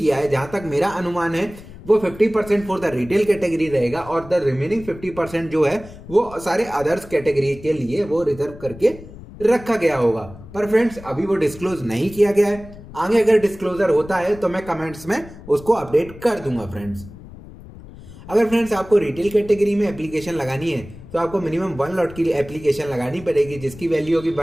है। जहां तक मेरा अनुमान है वो 50% फॉर द रिटेल कैटेगरी रहेगा और द रिमेनिंग 50% जो है वो सारे अदर्स कैटेगरी के लिए वो रिजर्व करके रखा गया होगा। पर फ्रेंड्स, अभी वो डिस्क्लोज नहीं किया गया है। आगे अगर डिस्क्लोजर होता है तो मैं कमेंट्स में उसको अपडेट कर दूंगा फ्रेंड्स। अगर फ्रेंड्स आपको रिटेल कैटेगरी में एप्लीकेशन लगानी है तो आपको मिनिमम 1 लॉट की एप्लीकेशन लगानी पड़ेगी, जिसकी वैल्यू होगी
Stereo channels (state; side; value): noise; left; rumble, 17 dB below the sound